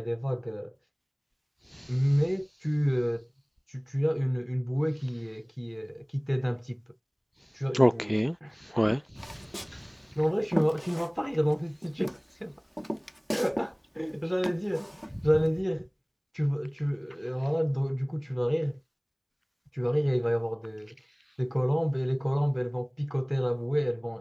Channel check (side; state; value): both; identical; correlation 1.00